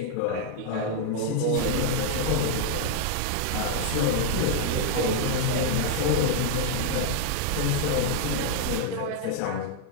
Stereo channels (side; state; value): both; different; correlation 0.00